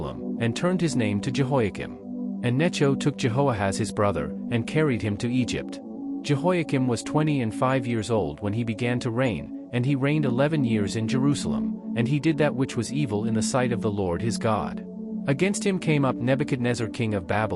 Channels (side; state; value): both; identical; correlation 1.00